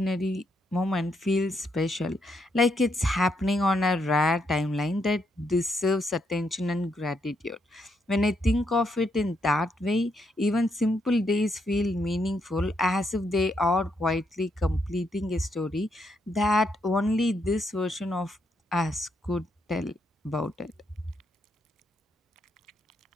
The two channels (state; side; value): normal; both; correlation 0.78